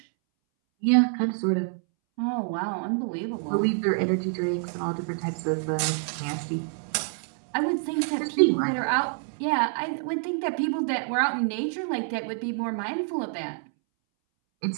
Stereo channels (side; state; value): left; silent; 60 dB below the other